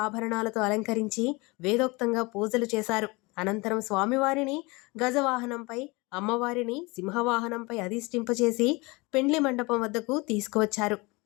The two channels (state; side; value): quieter; right; 25.3 dB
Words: ఆభరణాలతో అలంకరించి వేదోక్తంగా పూజలు చేశారు. అనంతరం స్వామివారిని గజవాహనంపై, అమ్మవారిని సింహవాహనంపై అధిష్ఠింపచేసి పెండ్లి మండపం వద్దకు తీసుకువచ్చారు.